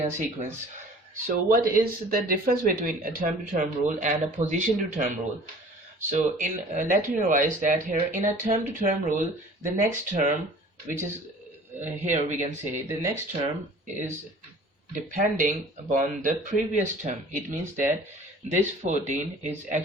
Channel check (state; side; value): normal; both; correlation 0.47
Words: sequence. So what is the difference between a term to term rule and a position to term rule? So in let me revise that here in a term to term rule, the next term, which is here we can say the next term is depending upon the previous term. It means that this 14 is